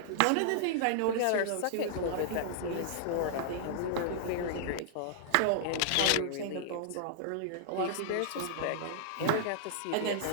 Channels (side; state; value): both; different; correlation -0.01